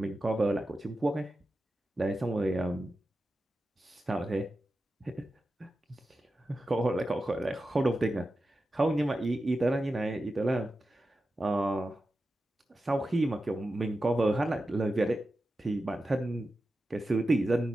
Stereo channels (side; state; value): both; normal; correlation 0.92